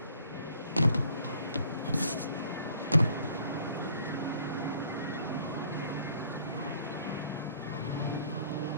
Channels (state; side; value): inverted; both; correlation -0.59